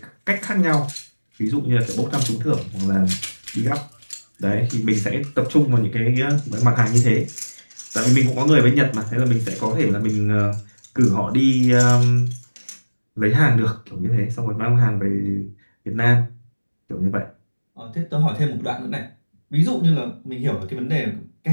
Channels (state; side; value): inverted; both; correlation -1.00